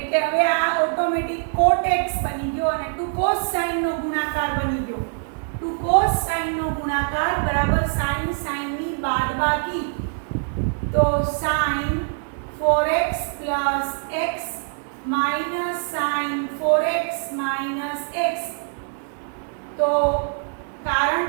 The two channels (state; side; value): silent; left; 63 dB below the other